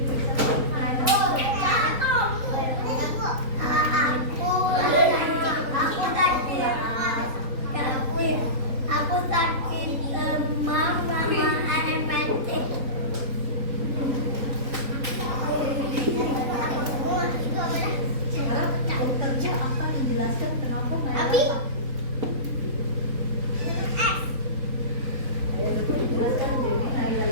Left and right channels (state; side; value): late; left; 3.9 ms